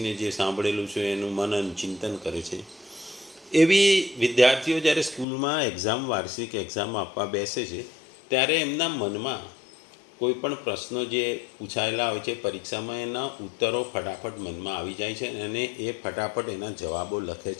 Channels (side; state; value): right; drops out; at 5.2 s